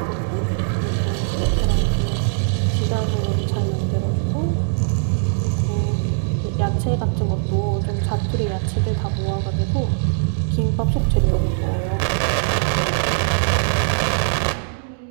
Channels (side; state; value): left; silent; digital silence